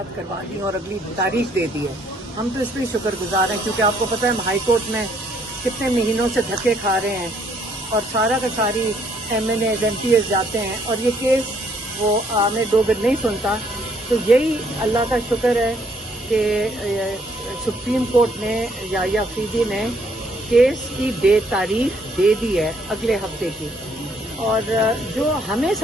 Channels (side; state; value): both; normal; correlation 0.67